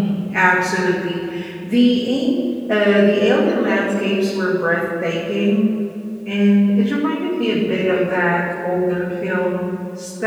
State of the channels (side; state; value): both; identical; correlation 1.00